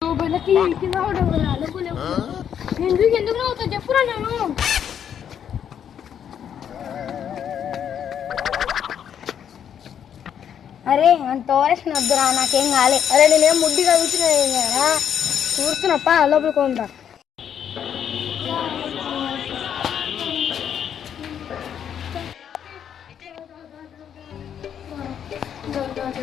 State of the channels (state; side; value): quieter; right; 8.8 dB